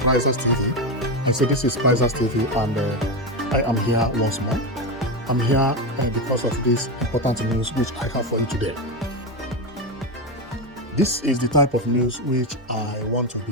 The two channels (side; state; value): both; normal; correlation 0.13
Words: Prizers TV. I say this is Prizers TV, and I am here once more. I'm here because of this important news which I have for you today. This is the type of news which I want to